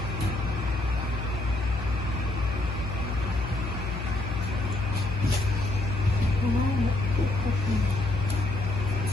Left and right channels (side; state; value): left; noise; hum, 5 dB below the sound